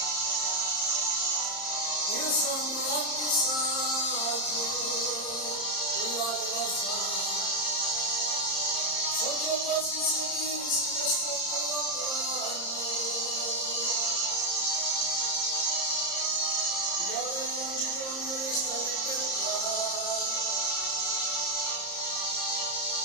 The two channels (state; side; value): late; right; 30 ms